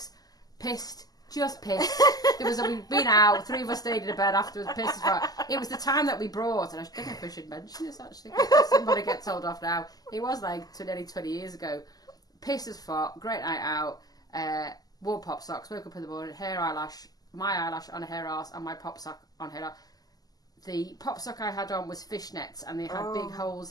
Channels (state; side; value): late; right; 0.18 ms